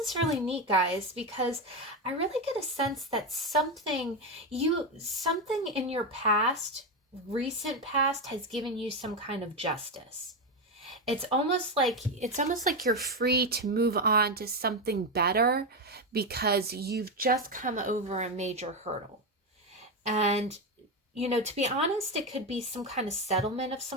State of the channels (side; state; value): both; normal; correlation 0.11